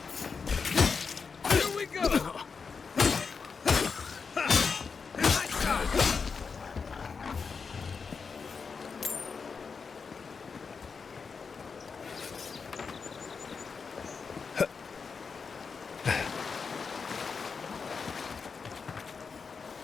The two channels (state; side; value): quieter; right; 5.3 dB